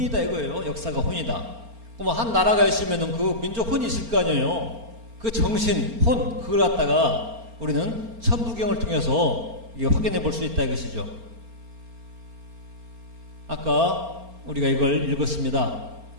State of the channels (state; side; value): late; left; 4.4 ms